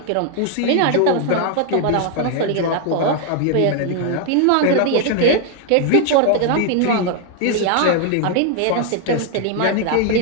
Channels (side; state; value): both; different; correlation 0.00